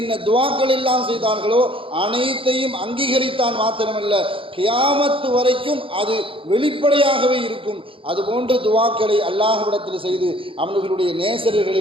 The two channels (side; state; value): left; late; 0.26 ms